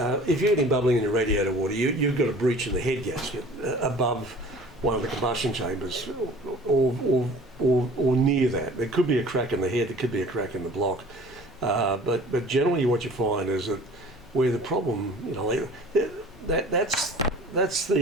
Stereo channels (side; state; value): both; normal; correlation 0.46